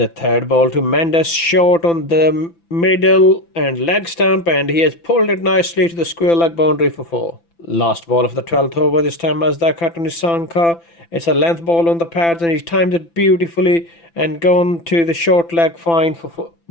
third ball to Mendes, short on the middle and leg stump, and he has pulled it nicely to the square leg boundary for 4. Last ball of the 12th over, this time Mazdaka to Nisanka. It's a length ball on the pads, and he's timed it beautifully and gone to the short leg fine for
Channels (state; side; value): late; right; 5.9 ms